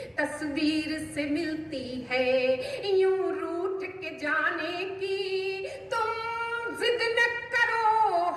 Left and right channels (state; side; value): identical; both; correlation 1.00